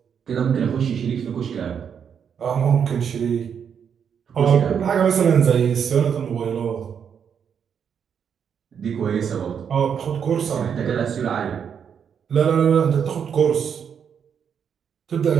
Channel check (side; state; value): left; quieter; 7.6 dB